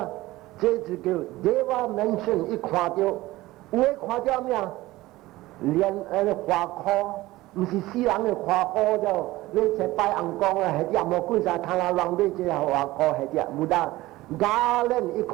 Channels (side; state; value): left; quieter; 18.2 dB